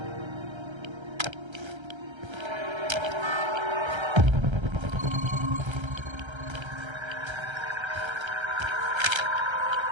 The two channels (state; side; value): late; left; 1.3 ms